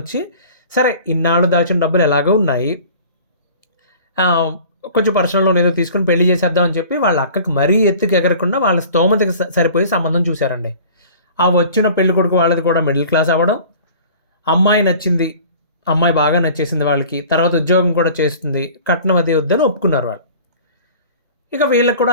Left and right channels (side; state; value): both; inverted; correlation -0.45